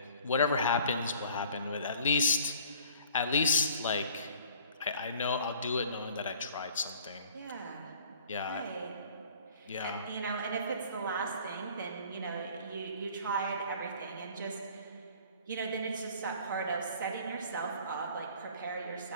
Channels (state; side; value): inverted; both; correlation -0.52